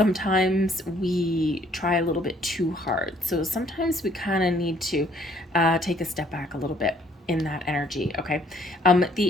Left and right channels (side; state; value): both; normal; correlation 0.62